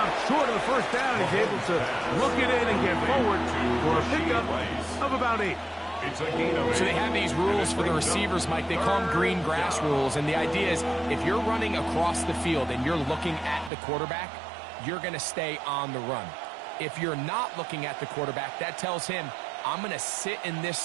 short of the first down. He's able to look it in and get forward for a pickup of about 8. So they have these rules for the receivers, Mike. They call them green grass rules. And the idea is if you're running across the field and you're looking at the quarterback, you're going to stay on the run. If you're not looking at the quarterback, that tells him, I'm going to sit in this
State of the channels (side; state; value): left; drops out; at 13.7 s